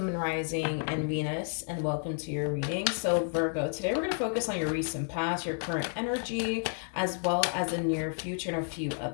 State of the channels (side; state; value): right; silent; 57 dB below the other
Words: Moon, Rising, and Venus, and welcome to your reading. So, Virgo, today we're going to focus on your recent past, your current energy, as well as the near future and a few